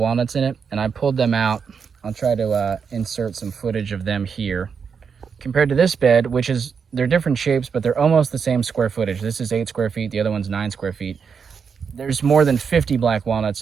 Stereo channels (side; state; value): left; quieter; 6.2 dB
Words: in it, and I pulled them out. I'll try to insert some footage of them here. Compared to this bed, they're different shapes, but they're almost the same square footage. This is 8 square feet, the other one's 9 square feet. There's more than 50 black walnuts,